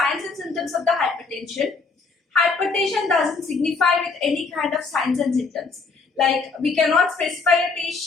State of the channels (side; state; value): right; quieter; 4.4 dB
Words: and symptoms of the hypertension, hypertension doesn't signify with any kind of signs and symptoms. Like, we cannot specify a